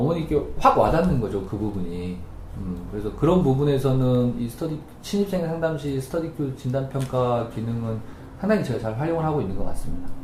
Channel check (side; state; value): both; identical; correlation 1.00